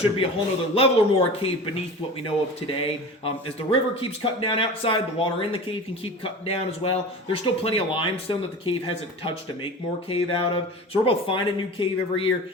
be a whole other level or more of cave beneath what we know of today. As the river keeps cutting down outside, the water in the cave can keep cutting down as well. There's still plenty of limestone that the cave hasn't touched to make more cave out of. So we're both finding new cave every year.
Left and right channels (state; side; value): normal; both; correlation 0.34